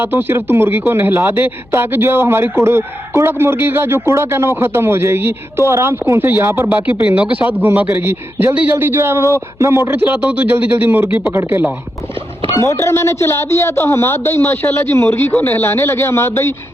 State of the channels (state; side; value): noise; left; hum, 28 dB below the sound